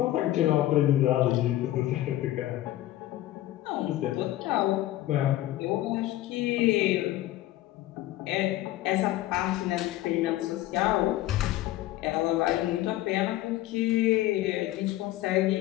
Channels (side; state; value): right; quieter; 15.0 dB